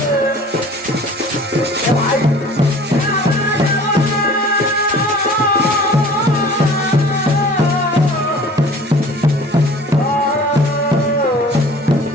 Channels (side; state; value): both; normal; correlation 0.46